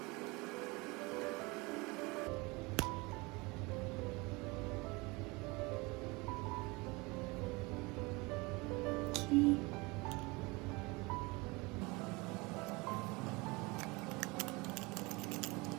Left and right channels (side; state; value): left; quieter; 25.3 dB